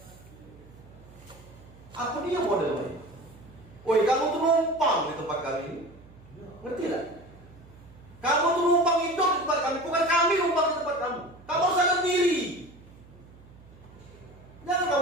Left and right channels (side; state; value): right; noise; hum, 22 dB below the sound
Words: Apa dia modelnya? Woi, kamu tuh numpang di tempat kami. Ngerti tak? Kamu tuh numpang hidup di tempat kami, bukan kami numpang di tempat kamu. Kamu harus sadar diri. Jangan